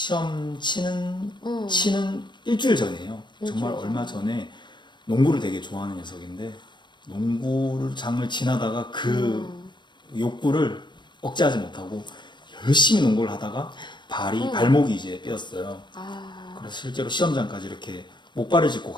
치는 일주일 전이에요. 정말 일주일 얼마 전에 농구를 되게 좋아하는 녀석인데 농구를 장을 지나다가 그 욕구를 억제하지 못하고 열심히 농구를 하다가 발목이 이제 삐었어요. 그래서 실제로 시험장까지 이렇게 목발을 짚고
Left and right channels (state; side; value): late; right; 0.22 ms